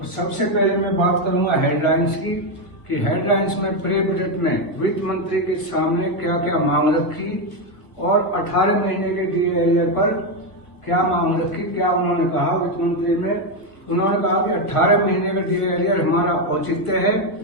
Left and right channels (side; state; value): right; late; 1.6 ms